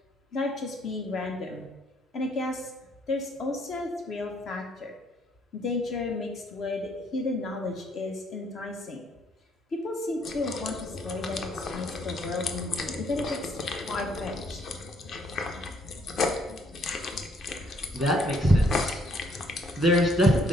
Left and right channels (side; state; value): both; normal; correlation 0.67